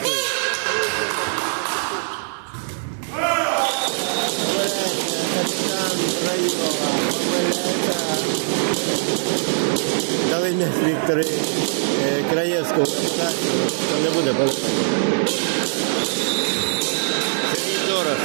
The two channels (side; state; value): left; silent; digital silence